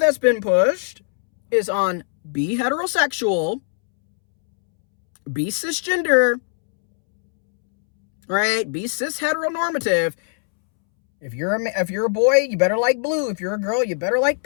been pushed is on be heterosexual, be cisgender, right? Be cis heteronormative, If you're a boy, you better like blue. If you're a girl, you better like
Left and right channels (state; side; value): silent; right; 65 dB below the other